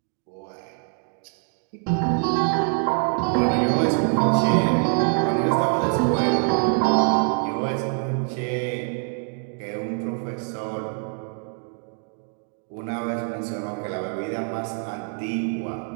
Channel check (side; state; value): left; quieter; 39.6 dB